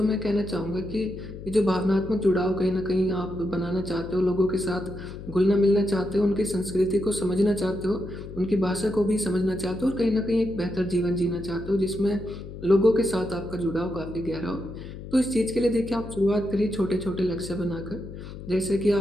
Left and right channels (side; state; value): left; noise; hum, 12 dB below the sound